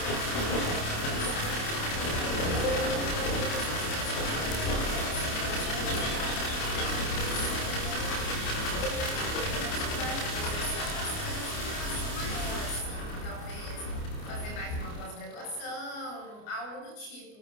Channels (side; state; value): right; late; 28 ms